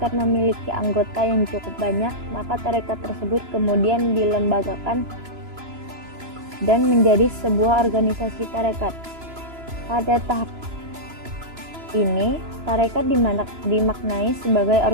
memiliki anggota yang cukup banyak, maka tarekat tersebut kemudian dilembagakan dan menjadi sebuah organisasi tarekat. Pada tahap ini, tarekat dimaknai sebagai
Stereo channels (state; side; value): late; left; 2.9 ms